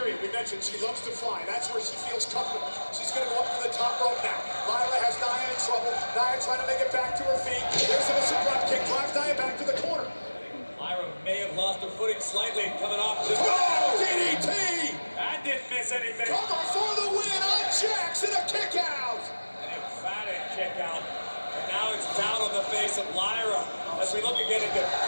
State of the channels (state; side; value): inverted; both; correlation -1.00